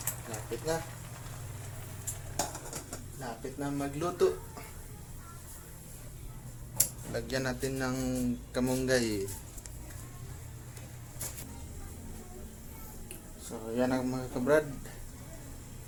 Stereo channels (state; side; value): identical; both; correlation 1.00